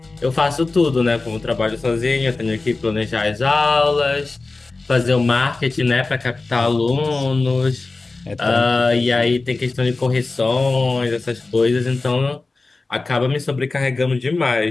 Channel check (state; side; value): quieter; right; 3.6 dB